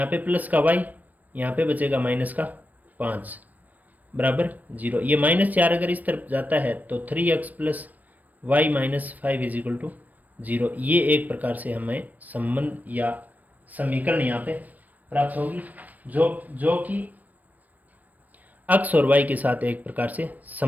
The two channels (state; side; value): late; left; 0.080 ms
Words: पे प्लस का y, यहाँ पे बचेगा माइनस का 5 बराबर 0। ये -4 अगर इस तरफ जाता है तो 3x + y - 5 = 0। ये एक प्रकार से हमें संबंध या समीकरण यहाँ पे प्राप्त होगी जो कि x और y के साथ एक प्रकार से